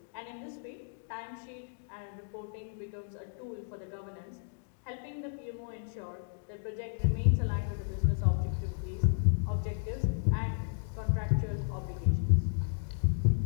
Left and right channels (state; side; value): silent; right; digital silence